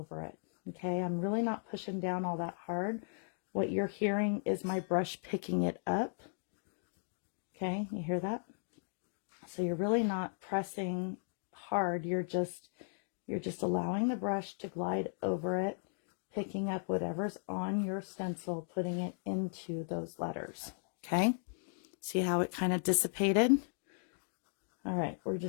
it. okay? I'm really not pushing down all that hard. What you're hearing is my brush picking it up, okay? You hear that? So you're really not pressing hard. You're just allowing the brush to glide over it, picking up whatever's on your stencil, putting it into those letters, okay? See how it kind of dissipated? All right, we're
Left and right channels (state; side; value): silent; right; digital silence